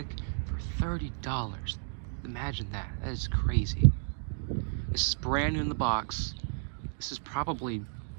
for $30. Imagine that. That is crazy. This is brand new in the box. This is probably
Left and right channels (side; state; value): left; silent; digital silence